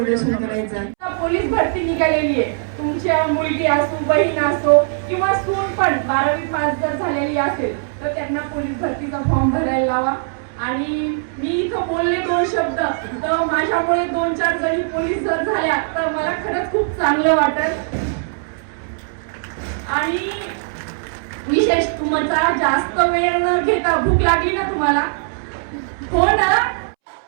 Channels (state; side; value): silent; left; 66 dB below the other